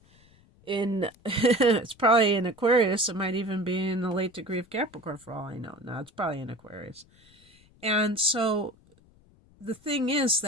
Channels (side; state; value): left; noise; rumble, 29 dB below the sound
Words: in, it's probably in Aquarius. It might even be in the late degree of Capricorn for all I know. No, it's probably in Aquarius. And so the thing is